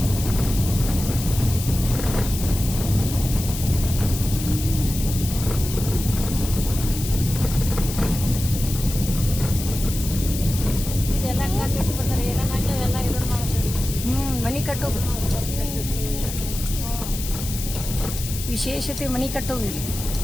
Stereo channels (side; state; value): left; noise; hiss, 8 dB below the sound